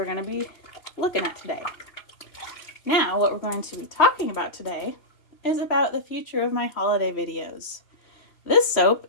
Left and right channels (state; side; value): late; right; 3.1 ms